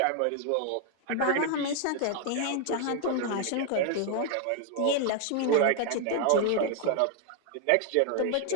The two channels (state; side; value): different; both; correlation 0.00